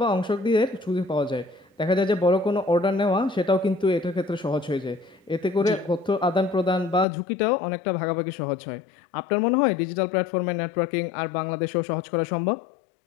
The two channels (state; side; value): drops out; right; at 7.1 s